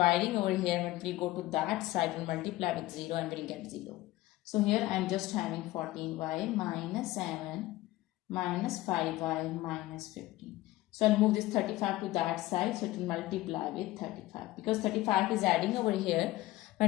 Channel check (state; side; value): quieter; right; 17.5 dB